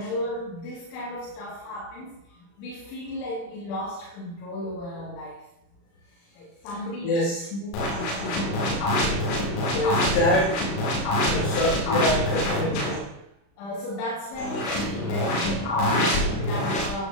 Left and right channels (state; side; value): late; right; 35 ms